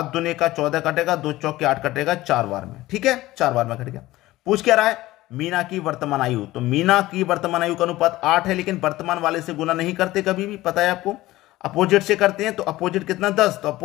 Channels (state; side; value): quieter; right; 17.3 dB